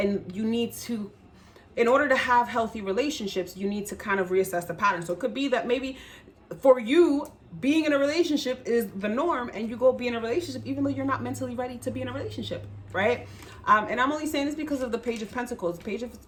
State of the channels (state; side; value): identical; both; correlation 1.00